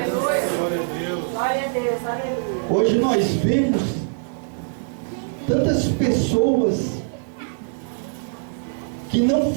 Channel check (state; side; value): silent; left; 56 dB below the other